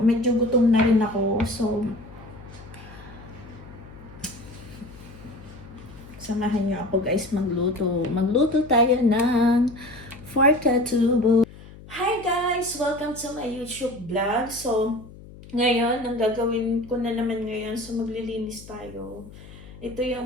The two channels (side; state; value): left; noise; hum, 18 dB below the sound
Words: gutom na rin ako. So, samahan niyo ako guys magluto. Magluto tayo ng pork adobo. Hi guys! Welcome to my YouTube vlog. So, ngayon, ang gagawin ko na naman ngayon, so maglilinis tayo. Ito